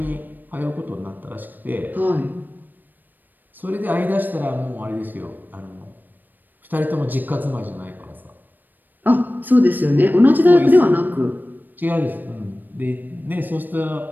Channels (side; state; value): left; late; 0.089 ms